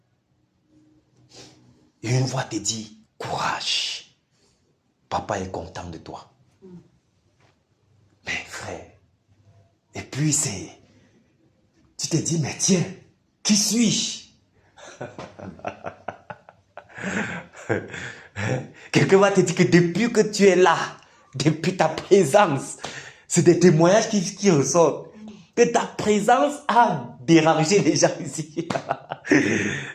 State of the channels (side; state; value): both; identical; correlation 1.00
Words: Et une voix te dit, courage, papa est content de toi. Mais frère, et puis tu te dis, mais tiens, qui suis-je? Quelqu'un va te dire que depuis que tu es là, depuis ta présence, c'est des témoignages qui ressortent. Que ta présence a dérangé les gens ici.